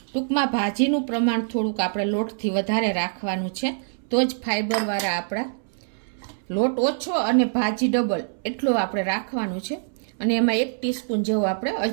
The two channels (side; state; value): left; silent; 62 dB below the other